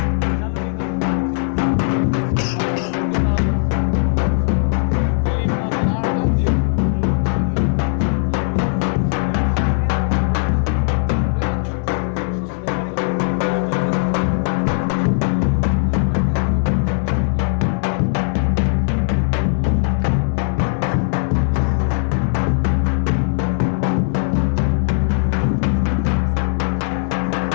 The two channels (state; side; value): silent; right; digital silence